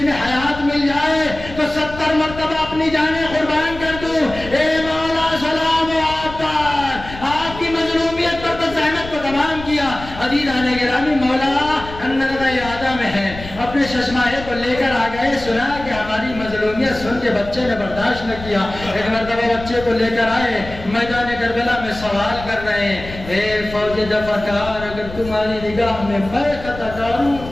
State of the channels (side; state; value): left; noise; rumble, 13 dB below the sound